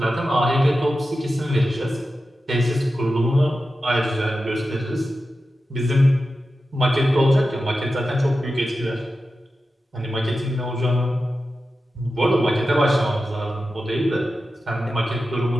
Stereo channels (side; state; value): both; normal; correlation 0.92